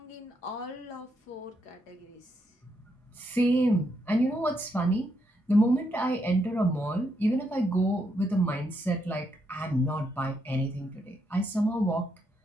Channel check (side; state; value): both; normal; correlation 0.78